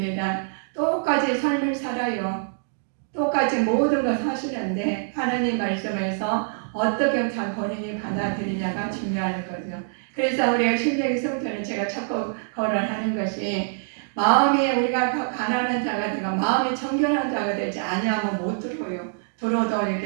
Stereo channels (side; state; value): left; silent; digital silence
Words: 똑같이 삶을 살아요. 똑같이 모든 걸 사시는데 하나님 말씀에서 어떻게 잘 본인이 받아들이냐가 중요한 거죠. 그래서 우리가 신명기 성전을 제가 자꾸 거론하는 것이 마음이 우리가 가난한 자가 되고 마음이 정결한 자가 되지 아니하면 못 들어요. 들어도